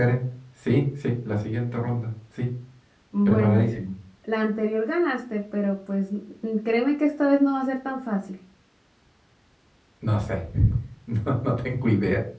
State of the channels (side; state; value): both; identical; correlation 1.00